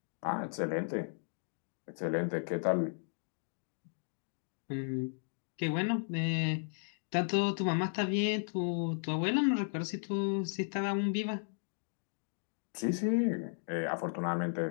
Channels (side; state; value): right; silent; digital silence